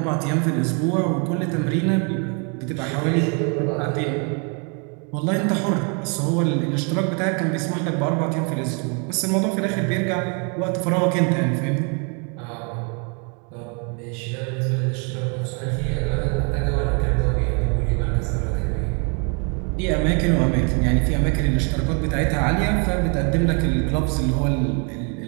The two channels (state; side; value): quieter; left; 36.4 dB